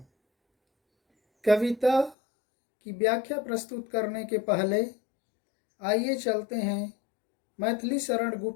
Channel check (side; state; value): right; drops out; at 2.1 s